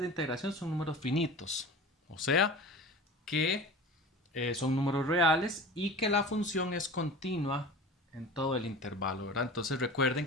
integración son números finitos. O sea, que son números reales y que la función es continua en todo el intervalo, ¿verdad? Entonces recuerden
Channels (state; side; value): normal; both; correlation 0.36